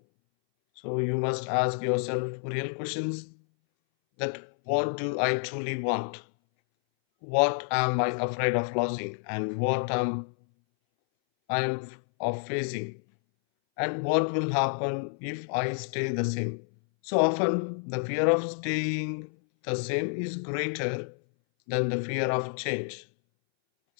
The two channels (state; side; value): silent; right; 59 dB below the other